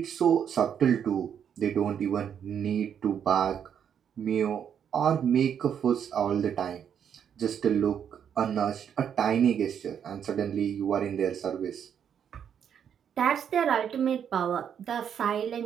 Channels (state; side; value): quieter; left; 8.4 dB